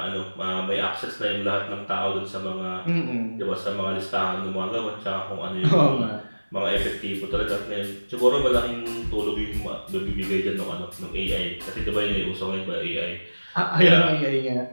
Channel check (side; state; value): both; inverted; correlation -1.00